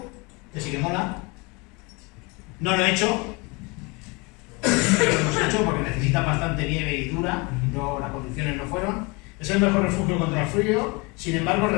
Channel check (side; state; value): right; quieter; 27.9 dB